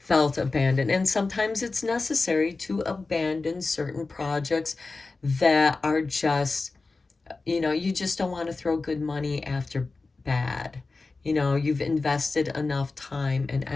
abandoned. And sometimes it's necessary to abandon certain projects that are just, you know, you just don't want to throw good money after bad. You know, you've invested enough time and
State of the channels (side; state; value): right; quieter; 3.8 dB